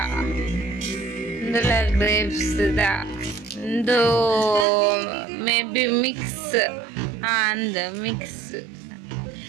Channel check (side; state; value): left; drops out; at 4.7 s